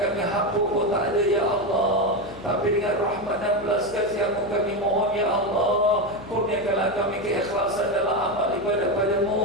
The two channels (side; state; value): left; noise; hum, 19 dB below the sound